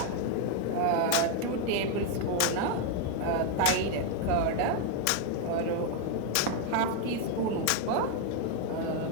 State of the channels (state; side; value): different; both; correlation 0.01